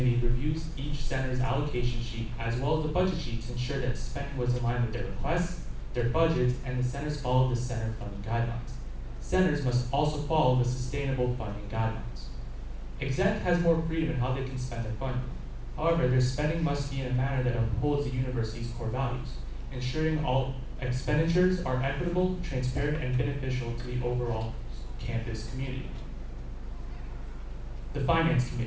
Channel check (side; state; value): both; identical; correlation 1.00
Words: reviews each center's allocation sheet as well as the budget sheet to ensure that spending was in line with their requests, their budgets, and the centers follow the center funding guidelines. Centers must also follow the sustainable funding guidelines. Exec has more freedom in how they can spend their funding. However, their spending must be in a manner that upholds the university's core values, ensuring all expenditures are equitable, transparent, and beneficial to the overall campus community. The Finance